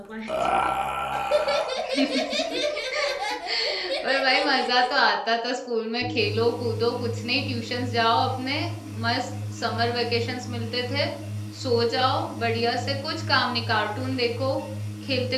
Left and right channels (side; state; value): both; identical; correlation 1.00